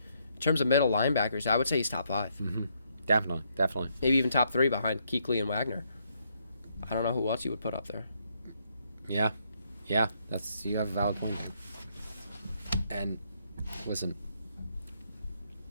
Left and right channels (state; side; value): inverted; both; correlation -0.74